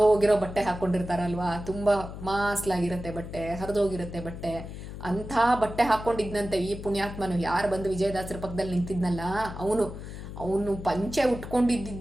ಬಟ್ಟೆ ಹಾಕೊಂಡಿರ್ತಾರಲ್ವಾ, ತುಂಬಾ ಮಾಸ್ಲಾಗಿರುತ್ತೆ ಬಟ್ಟೆ, ಹರಿದೋಗಿರುತ್ತೆ ಬಟ್ಟೆ. ಅಂಥ ಬಟ್ಟೆ ಹಾಕೊಂಡಿದ್ನಂತೆ ಈ ಪುಣ್ಯಾತ್ಮನು. ಯಾರು ಬಂದು ವಿಜಯದಾಸರ ಪಕ್ಕದಲ್ಲಿ ನಿಂತಿದ್ನಲ್ಲ ಅವನು ಪಂಚೆ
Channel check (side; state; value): left; noise; hum, 10 dB below the sound